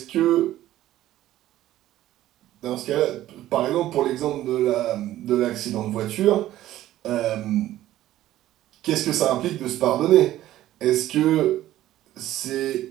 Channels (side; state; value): left; quieter; 14.0 dB